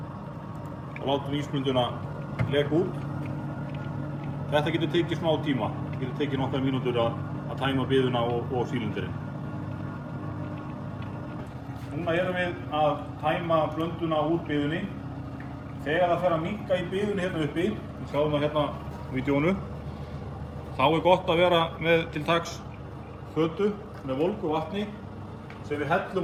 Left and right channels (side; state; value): both; identical; correlation 1.00